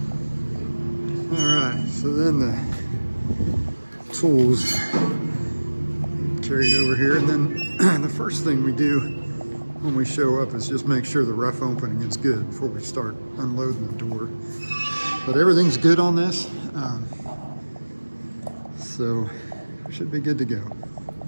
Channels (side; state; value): both; inverted; correlation -1.00